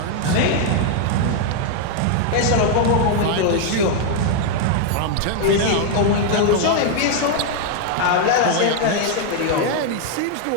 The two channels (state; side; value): different; both; correlation 0.00